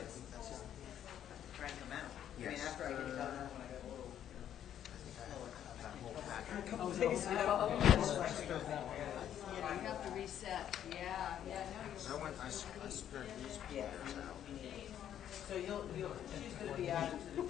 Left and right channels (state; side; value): quieter; right; 10.3 dB